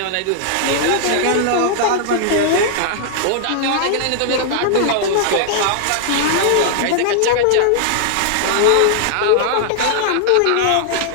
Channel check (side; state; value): both; different; correlation -0.01